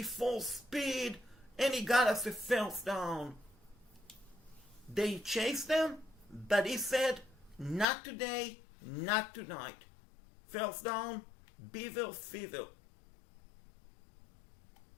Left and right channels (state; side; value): drops out; right; at 7.9 s